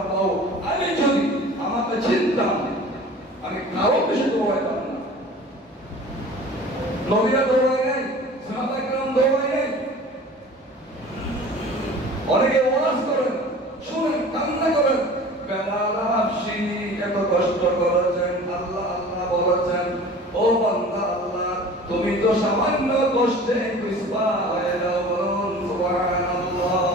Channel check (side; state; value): both; normal; correlation 0.42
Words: আমি যদি আমাকে চিনতাম আমি কারো বেশি দৌড়াইতাম না। নবীরা দৌড়ায় নাই, সাহাবায়ে কেরাম দৌড়ায় নাই। অনেকে ওয়াজ করেন, শুনেন, কান্না করেন, বেলাল হাবশী এত কষ্ট করেছেন, আল্লাহ আল্লাহ বলেছেন, ও বান্দা আল্লাহ তুমি তো সামান্য কষ্টে কুসবা হয়ে যাও। বলুন সুবহানাল্লাহ।